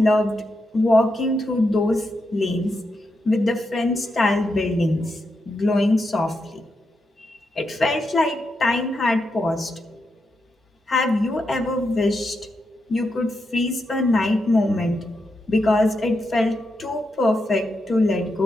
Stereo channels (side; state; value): both; normal; correlation 0.85